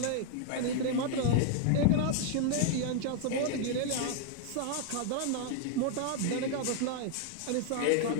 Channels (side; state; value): both; different; correlation 0.00